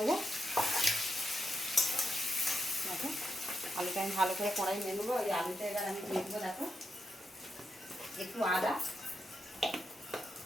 দেখো আলুটা আমি ভালো করে কড়াই নিয়ে নেবো। ওই আলুটা এবার আমি দিয়ে দেবো। দেখো একটু আদা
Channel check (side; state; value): both; normal; correlation 0.85